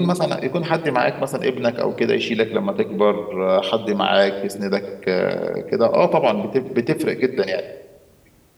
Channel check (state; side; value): identical; both; correlation 1.00